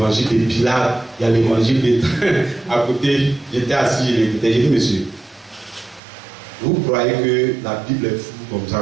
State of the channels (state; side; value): drops out; left; at 6.0 s